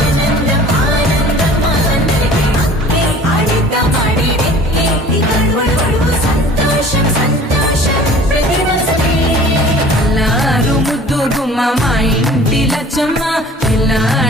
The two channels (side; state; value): both; normal; correlation 0.46